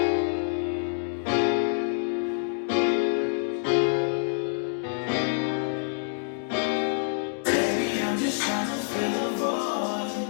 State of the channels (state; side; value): silent; right; digital silence